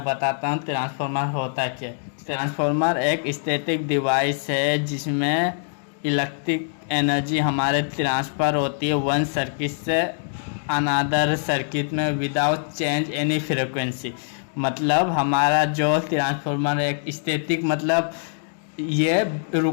बताता हूँ ट्रांसफॉर्मर होता क्या है। ट्रांसफॉर्मर एक स्टैटिक डिवाइस है जिसमें इलेक्ट्रिक एनर्जी हमारे ट्रांसफ़र होती है वन सर्किट से अनदर सर्किट में विदाउट चेंज एनी फ्रिक्वेंसी। मतलब हमारा जो ट्रांसफॉर्मर एक स्टैटिक मतलब ये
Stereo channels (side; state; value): right; silent; digital silence